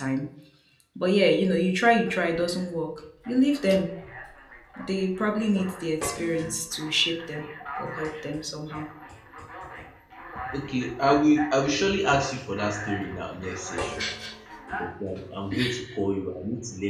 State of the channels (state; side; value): identical; both; correlation 1.00